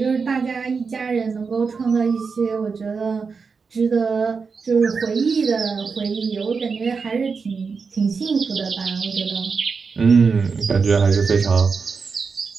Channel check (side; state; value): left; quieter; 5.2 dB